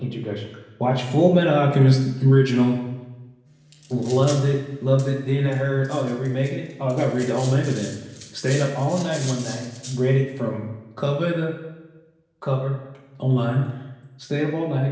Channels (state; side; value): identical; both; correlation 1.00